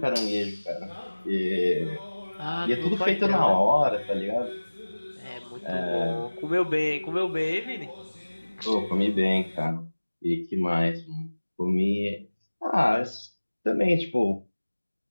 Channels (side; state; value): both; inverted; correlation -1.00